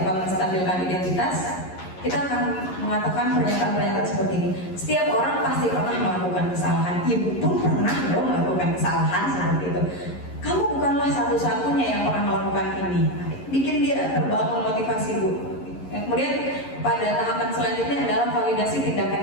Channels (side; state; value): right; late; 11 ms